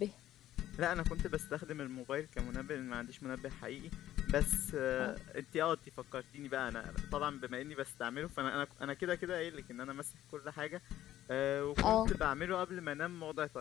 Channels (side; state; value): right; quieter; 13.1 dB